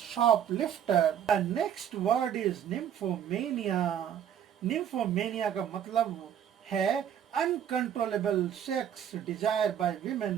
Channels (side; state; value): left; quieter; 9.5 dB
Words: The next word is nymphomania. Nymphomania का मतलब है uncontrollable sex desire by